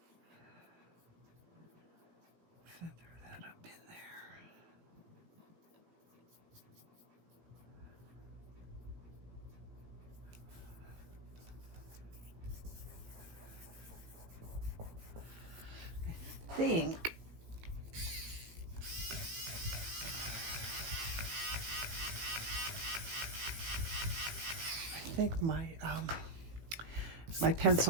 Feather that up in there. I think my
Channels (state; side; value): late; left; 17 ms